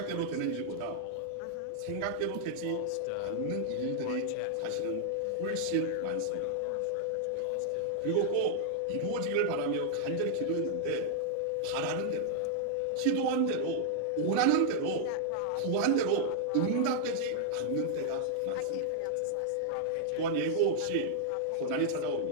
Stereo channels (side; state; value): both; different; correlation -0.01